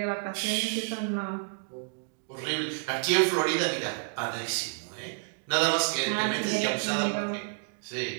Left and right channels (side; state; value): left; silent; digital silence